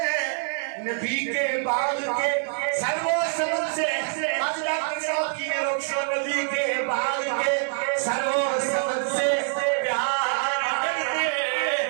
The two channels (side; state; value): left; silent; 57 dB below the other